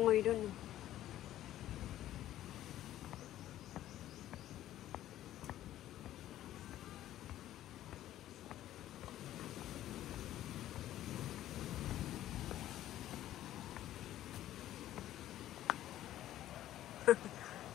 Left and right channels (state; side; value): quieter; right; 13.2 dB